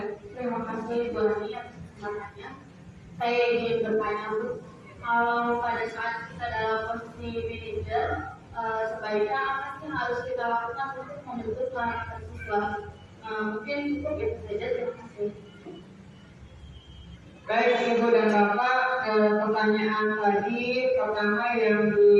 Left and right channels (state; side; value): identical; both; correlation 1.00